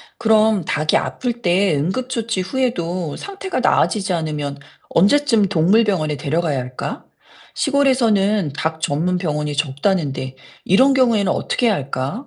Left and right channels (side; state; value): both; identical; correlation 1.00